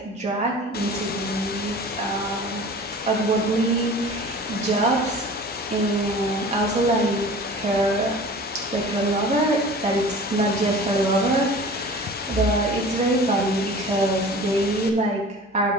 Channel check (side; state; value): both; normal; correlation 0.41